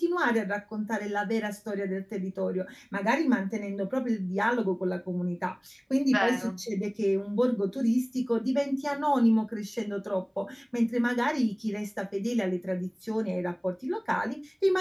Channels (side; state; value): both; identical; correlation 1.00